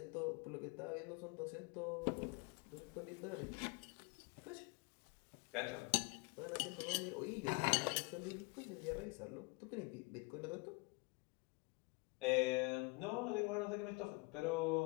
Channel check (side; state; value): right; quieter; 28.9 dB